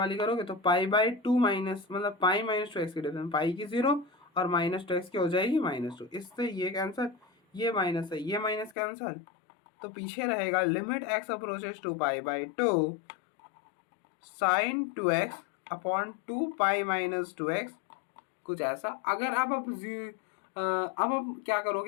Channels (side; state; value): right; drops out; at 8.8 s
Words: करोगे तो पाई बाई 2 माइनस मतलब पाई माइनस 2x की डिफरेंस, पाई की 0 और माइनस 2x की हो जाएगी -2। इससे ये कैंसल, ये माइनस है, ये माइनस कैंसल, तो पीछे रहेगा limit x approaches to pi by 2 sine 2x upon 2 pi minus 2x, कुछ ऐसा। अगर अब आप क्या